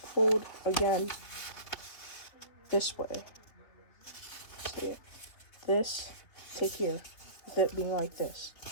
again this way. See it? This to here, with it being like this.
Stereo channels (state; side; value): late; right; 3.7 ms